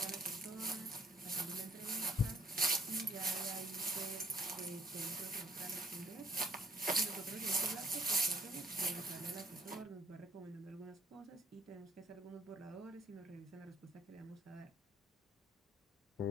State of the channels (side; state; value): both; normal; correlation 0.62